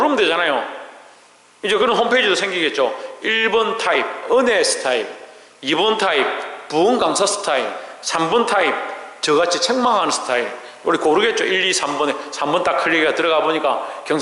되잖아요. 이제 그런 홈페이지도 생기겠죠. 1번 타입 은혜 스타일, 2번 타입 부흥 강사 스타일, 3번 타입 저같이 책망하는 스타일. 우리 고르겠죠. 1, 2, 3번에 3번 딱 클릭해서 들어가 보니까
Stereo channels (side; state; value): both; identical; correlation 1.00